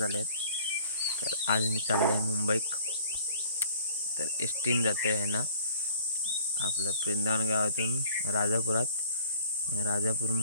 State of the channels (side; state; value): both; inverted; correlation -0.53